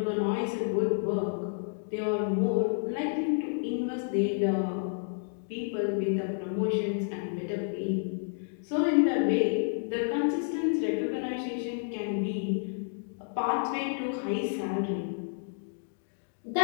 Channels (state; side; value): silent; right; digital silence